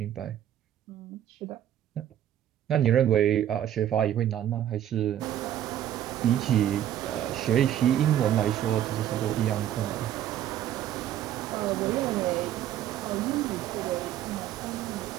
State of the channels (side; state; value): left; quieter; 11.3 dB